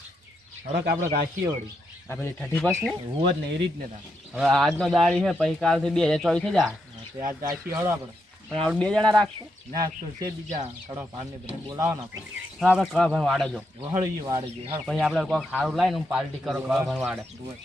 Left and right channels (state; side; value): normal; both; correlation 0.82